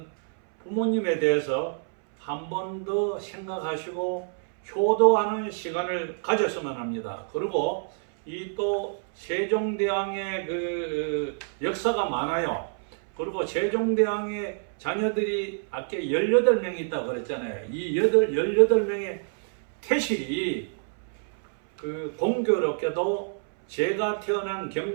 부모님에 대해서 한 번 더 생각하시고 효도하는 시간을 가졌으면 합니다. 그리고 이 또 세종대왕의 그 역사가 많아요. 그리고 세종대왕의 자녀들이 아까 18명이 있다고 그랬잖아요. 이 18명의 태실이 그 공교롭게도 제가 태어난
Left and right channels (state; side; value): silent; left; 60 dB below the other